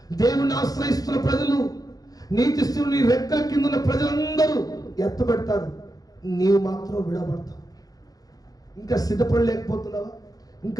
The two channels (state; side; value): late; right; 0.18 ms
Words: దేవుని ఆశ్రయిస్తున్న ప్రజలు, నీతిస్తుని రెక్కల కింద ఉన్న ప్రజలందరూ ఎత్తబడతారు, నీవు మాత్రం విడవబడతావు. ఇంకా సిద్ధపడలేకపోతున్నావా?